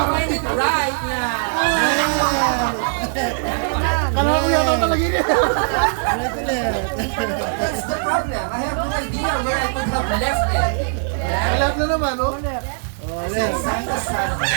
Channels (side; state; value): left; silent; 55 dB below the other